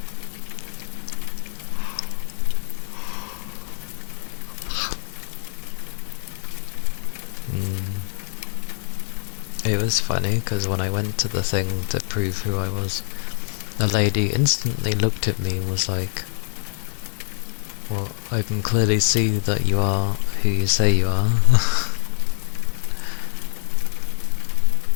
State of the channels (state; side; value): silent; right; 63 dB below the other